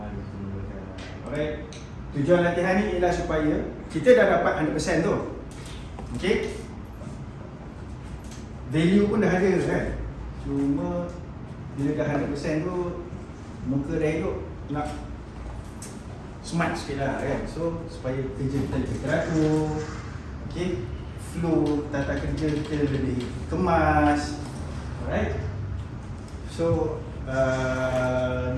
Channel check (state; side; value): identical; both; correlation 1.00